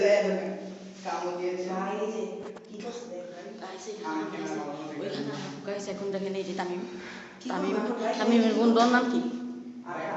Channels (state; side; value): identical; both; correlation 1.00